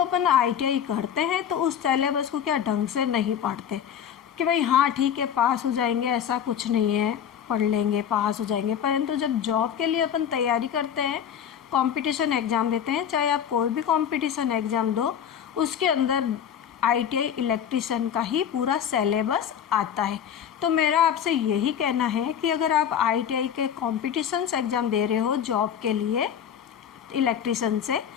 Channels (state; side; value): quieter; right; 8.8 dB